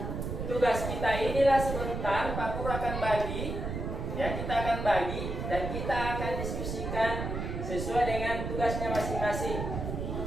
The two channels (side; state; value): right; noise; rumble, 4 dB below the sound